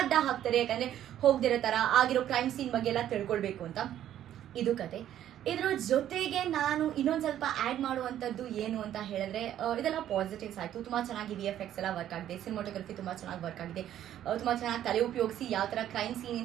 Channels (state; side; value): quieter; left; 11.4 dB